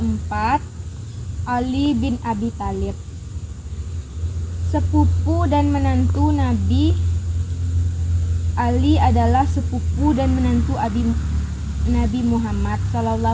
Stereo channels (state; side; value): identical; both; correlation 1.00